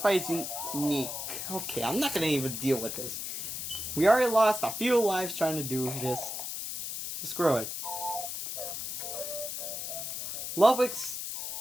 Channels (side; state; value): left; noise; hiss, 5 dB below the sound